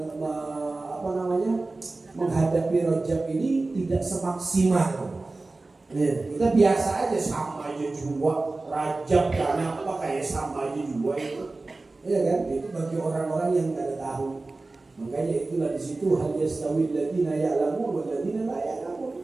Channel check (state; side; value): quieter; left; 3.3 dB